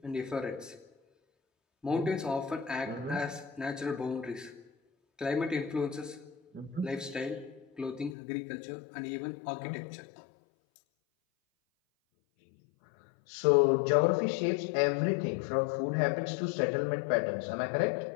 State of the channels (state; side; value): drops out; right; at 8.2 s